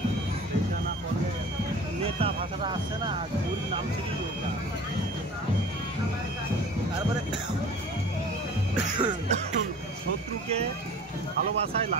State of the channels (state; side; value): normal; both; correlation 0.43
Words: এটা না করলে নেতা ভাষাটা আসছে না ওর নাম থেকেই ওটা তারপরে শত্রুকে ভালোবাসায়